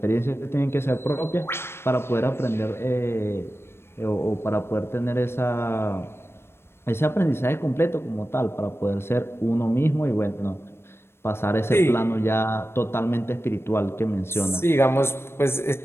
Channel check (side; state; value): right; late; 0.12 ms